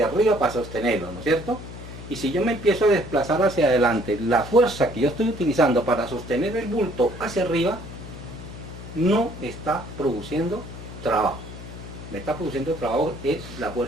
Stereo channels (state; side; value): noise; left; hum, 13 dB below the sound